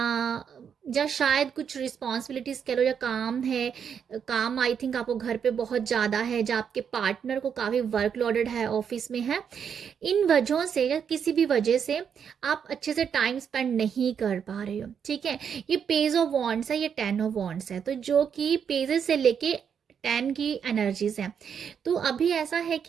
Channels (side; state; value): left; quieter; 7.5 dB